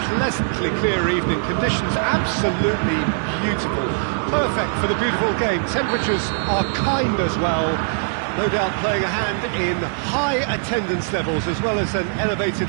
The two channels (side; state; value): left; silent; digital silence